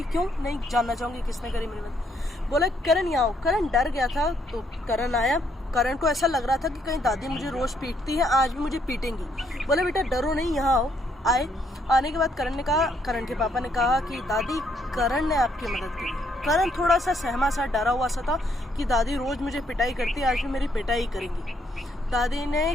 क्यों नहीं जानना चाहूँगी किसने करी मेरी मदद। बोला करण यहाँ आओ। करण डर गया था। तो करण आया। करण को ऐसा लग रहा था कि कहीं दादी मुझे रोज़ पीटती है, आज भी मुझे पीटेंगी। बोले बेटा डरो नहीं, यहाँ आओ। आए। आने के बाद करण के पापा ने कहा कि दादी करण ने आपकी मदद की। करण थोड़ा सा सहमा सा, डरा हुआ सा था कि दादी रोज़ मुझे पिटाई करती है, आज भी मेरी पिटाई करेंगी। दादी ने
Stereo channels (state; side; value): normal; both; correlation 0.71